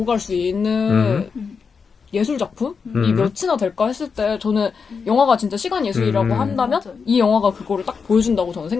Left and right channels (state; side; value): quieter; right; 5.6 dB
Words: 갈 수 있는 예술 작품이 몇이나 될까 했을 때 저는 영화가 진짜 시간 예술이라고 한다면 맞아요. 이 영화가 그거를 딱 보여준다고 저는